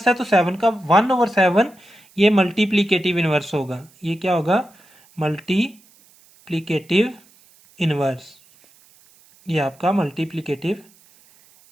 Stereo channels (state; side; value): noise; right; hiss, 29 dB below the sound